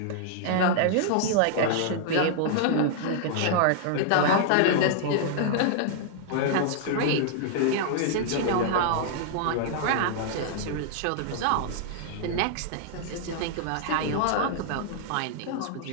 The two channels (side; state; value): both; different; correlation -0.01